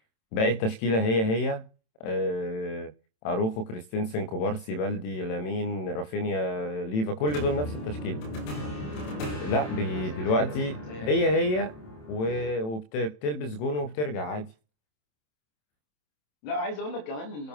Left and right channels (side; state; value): right; late; 27 ms